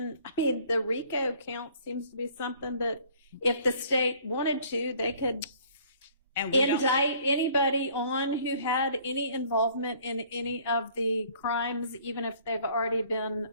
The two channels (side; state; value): both; inverted; correlation -0.56